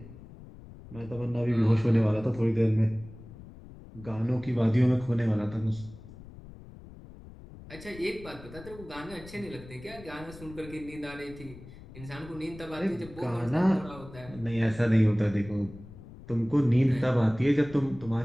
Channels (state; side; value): noise; left; rumble, 17 dB below the sound